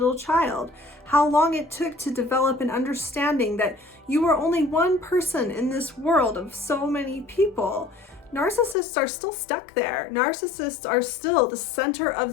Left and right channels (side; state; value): right; drops out; at 8.8 s